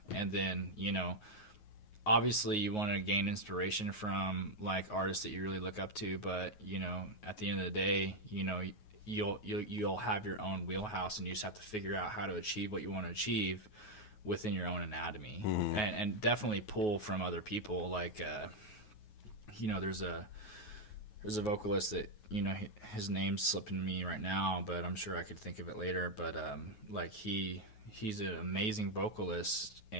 and then, obviously you want to gain inspiration from, like, artists that you really look up to, but at the end of the day, you'll have your own wheelhouse, and you just have to figure out how to achieve what you want to achieve within your own anatomy, and definitely pull from other people. Like, there's a vocalist that his name's slipping me right now, but I'm sure I could think of it later. But like, he's an amazing vocalist,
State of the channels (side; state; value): right; late; 9.4 ms